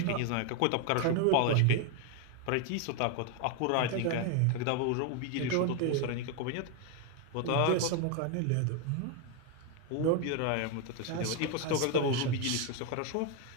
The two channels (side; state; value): both; different; correlation 0.01